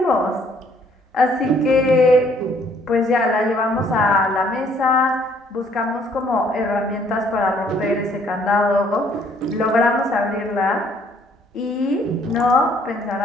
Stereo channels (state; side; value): normal; both; correlation 0.63